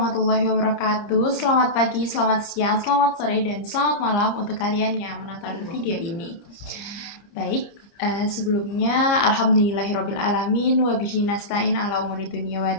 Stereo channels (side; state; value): right; late; 30 ms